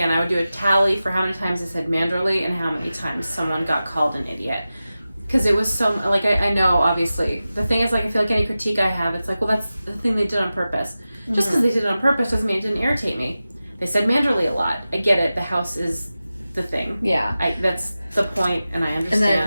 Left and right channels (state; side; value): inverted; both; correlation -0.94